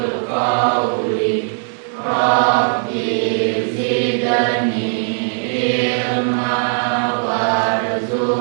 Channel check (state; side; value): silent; left; 62 dB below the other